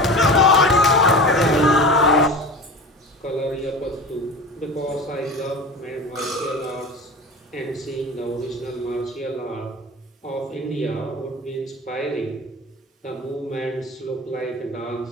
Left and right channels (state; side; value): normal; both; correlation 0.32